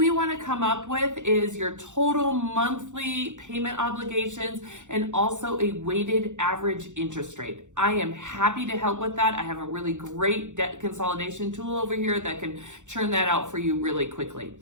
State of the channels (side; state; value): left; late; 0.85 ms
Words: want to come up with is your total monthly payment obligations and also a weighted average interest rate. I am happy to help with that. I have a really great debt consolidation tool over here that can churn that out for you really quickly.